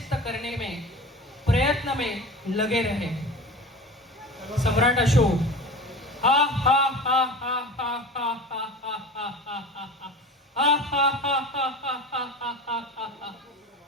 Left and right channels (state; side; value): normal; both; correlation 0.34